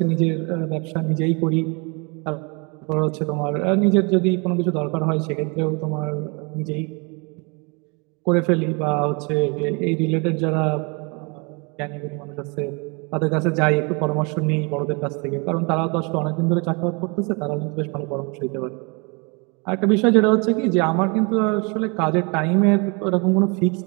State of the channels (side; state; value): left; quieter; 31.5 dB